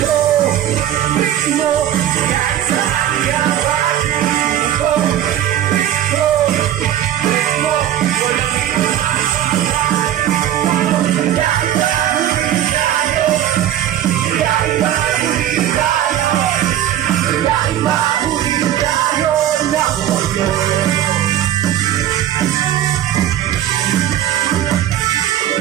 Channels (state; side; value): quieter; left; 11.5 dB